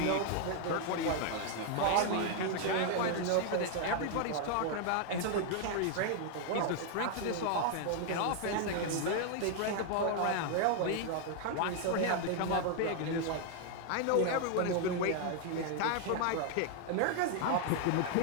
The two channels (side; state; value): both; different; correlation 0.00